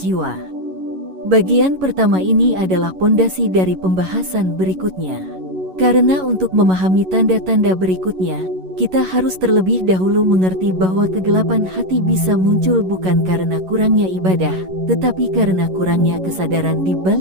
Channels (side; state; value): left; late; 11 ms